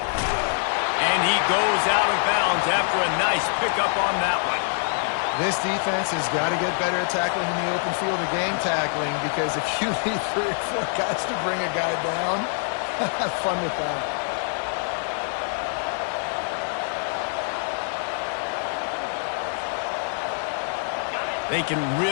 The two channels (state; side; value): silent; right; 62 dB below the other